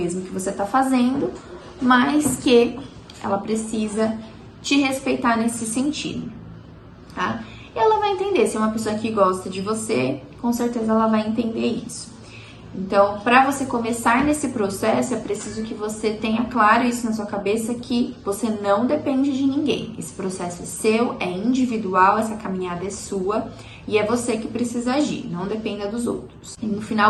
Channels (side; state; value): both; identical; correlation 1.00